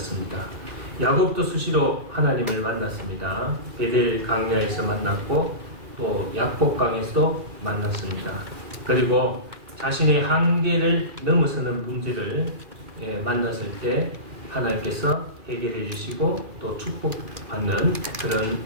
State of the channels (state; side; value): late; left; 2.4 ms